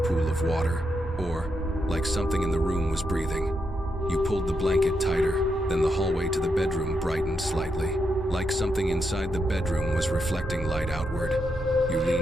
pool of water, or like something in the room was breathing. You pulled the blanket tighter, then the hallway to the bedroom brightened slightly, like something inside the bedroom was reflecting light outward. You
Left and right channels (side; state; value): both; normal; correlation 0.82